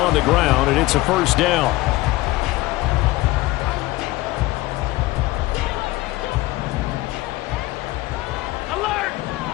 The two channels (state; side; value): quieter; right; 18.9 dB